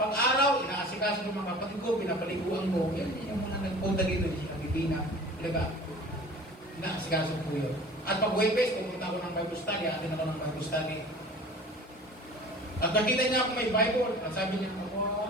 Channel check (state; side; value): normal; both; correlation 0.43